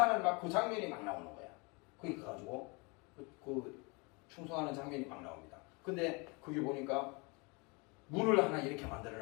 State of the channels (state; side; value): quieter; right; 29.0 dB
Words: 막 그 장면이 막 나오는 거야. 거기 가가지고 그 충성하는 장면이 막 나옵니다. 근데 거기 보니까 문을 하나 이렇게